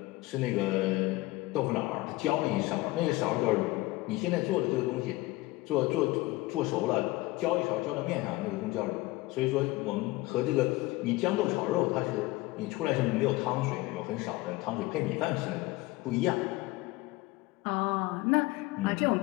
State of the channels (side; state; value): right; quieter; 20.2 dB